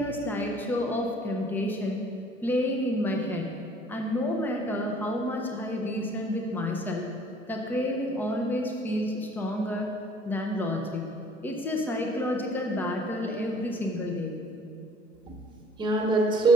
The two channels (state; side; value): normal; both; correlation 0.53